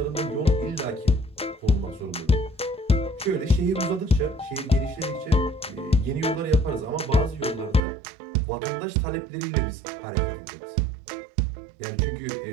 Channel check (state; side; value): drops out; left; at 7.8 s